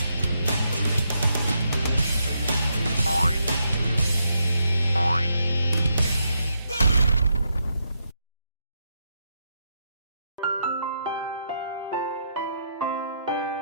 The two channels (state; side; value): inverted; both; correlation -0.80